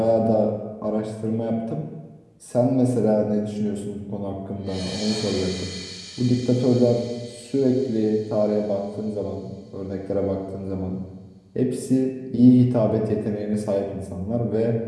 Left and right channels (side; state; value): both; identical; correlation 1.00